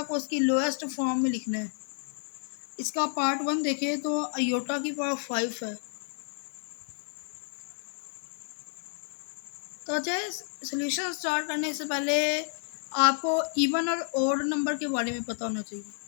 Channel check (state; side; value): silent; right; 58 dB below the other